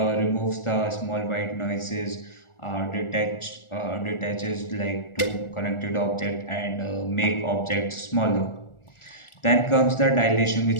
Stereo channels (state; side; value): late; right; 1.4 ms